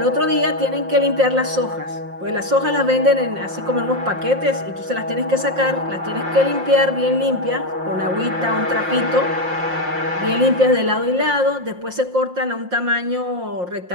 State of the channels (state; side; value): late; left; 5.7 ms